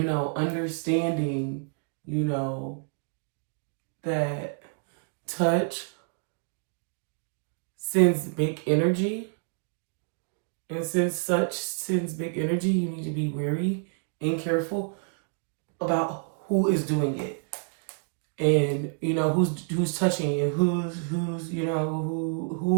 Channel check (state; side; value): silent; left; 56 dB below the other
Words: know, understanding, you know, that touch sends big energy. And since such sends big energy, you need to be wary and careful about who is doing it. And you know who's touching you, who's you know